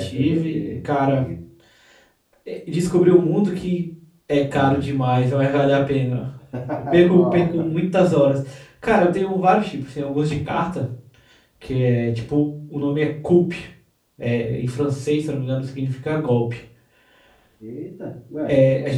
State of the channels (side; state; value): both; identical; correlation 1.00